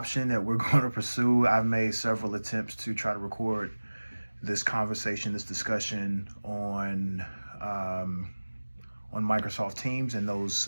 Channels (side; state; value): both; inverted; correlation -1.00